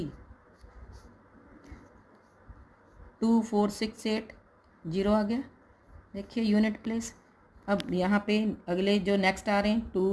2 4 6 8 0 आ गया. देखिए unit place. अब यहाँ पे अगले जो next आ रहे हैं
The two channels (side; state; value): both; identical; correlation 1.00